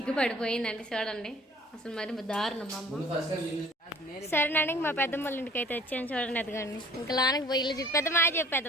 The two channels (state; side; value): normal; both; correlation 0.51